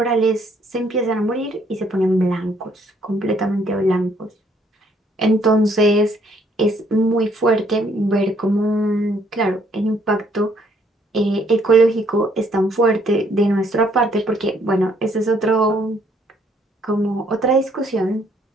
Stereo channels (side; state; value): both; normal; correlation 0.67